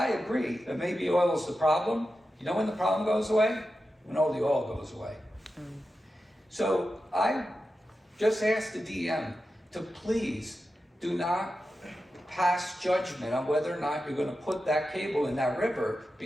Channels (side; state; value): both; normal; correlation 0.91